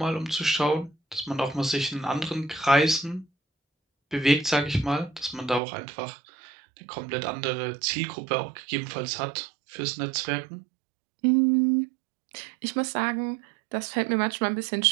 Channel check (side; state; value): left; drops out; at 5.6 s